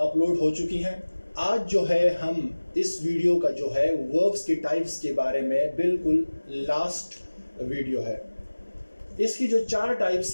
हो चुकी हैं। आज जो है हम इस वीडियो का जो है वर्ब्स के टाइप्स के बारे में बिल्कुल लास्ट वीडियो है। इसकी जो 4 टाइप्स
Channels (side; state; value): both; inverted; correlation -1.00